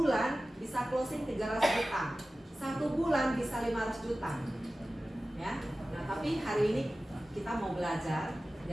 bisa closing 300 juta, 1 bulan bisa 500 juta. Ya, nah tapi hari ini kita mau belajar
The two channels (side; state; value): both; normal; correlation 0.96